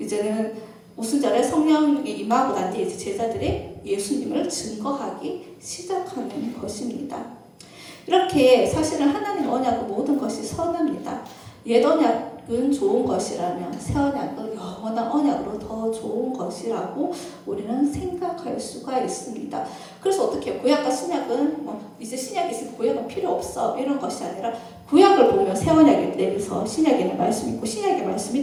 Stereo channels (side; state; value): both; identical; correlation 1.00